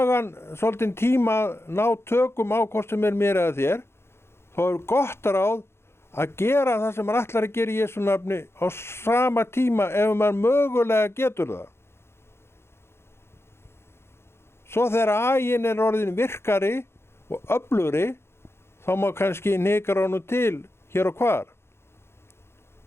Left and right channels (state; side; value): late; right; 0.12 ms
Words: svolítinn tíma að ná tökum á hvort sem er mér eða þér, þá er gott ráð að gera það sem maður ætlar að gera í Jesú nafni á sama tíma ef maður mögulega getur það. Svo þegar aginn er orðin virkari og öflugri, þá má kannski hnikra honum til hér og hvar.